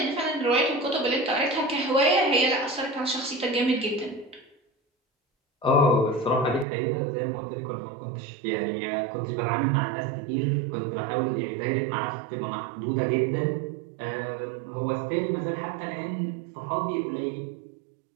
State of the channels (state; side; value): drops out; left; at 6.7 s